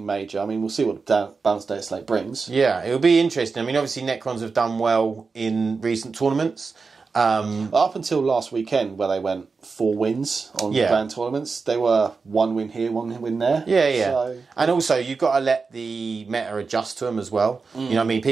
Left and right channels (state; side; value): quieter; left; 4.6 dB